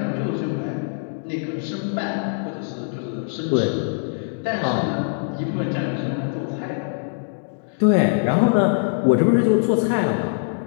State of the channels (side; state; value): right; silent; digital silence